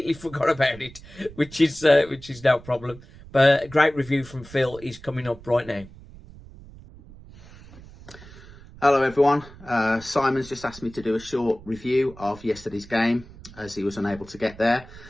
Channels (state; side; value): noise; right; rumble, 19 dB below the sound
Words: forgot about it, which is no problem. But a great review from Phil is coming up right now. Hello everyone, Simon's just asked me to do a short review of yesterday's game as he was unable to get there